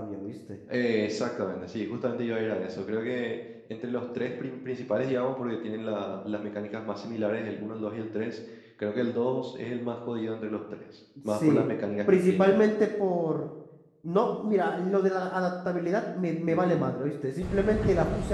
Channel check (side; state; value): both; identical; correlation 1.00